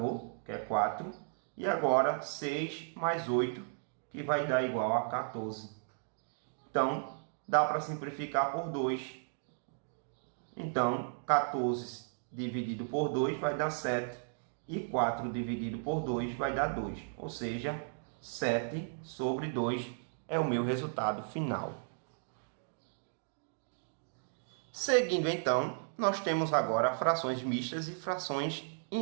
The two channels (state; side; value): silent; left; digital silence